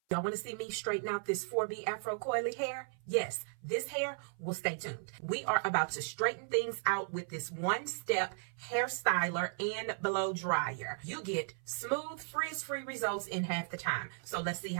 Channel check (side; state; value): left; silent; 54 dB below the other